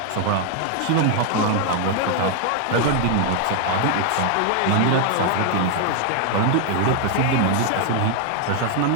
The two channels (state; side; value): different; both; correlation 0.00